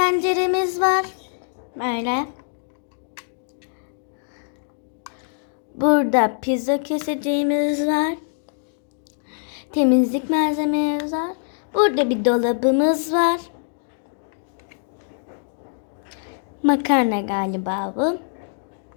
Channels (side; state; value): right; silent; digital silence